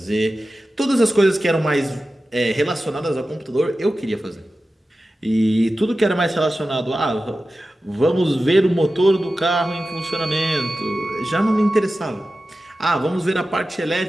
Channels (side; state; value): both; normal; correlation 0.94